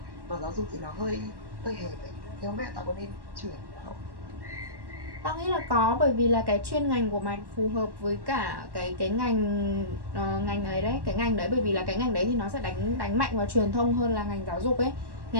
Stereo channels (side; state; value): left; late; 1.1 ms